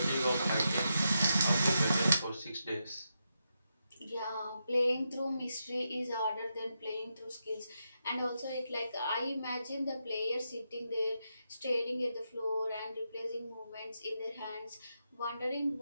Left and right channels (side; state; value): both; inverted; correlation -0.85